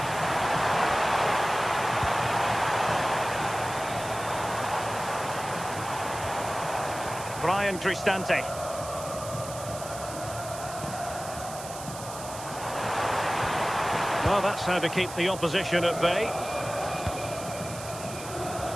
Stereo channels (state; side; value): noise; right; hiss, 12 dB below the sound